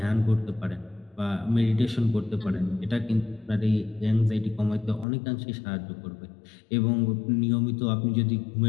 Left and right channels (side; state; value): right; drops out; at 5.1 s